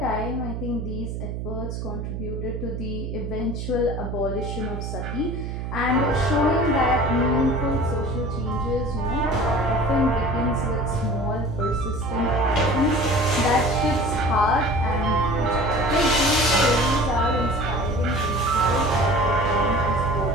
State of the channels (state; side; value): noise; right; hum, 5 dB below the sound